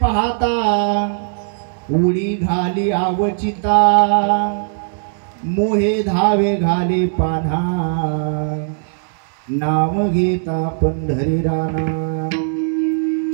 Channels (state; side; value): silent; left; 67 dB below the other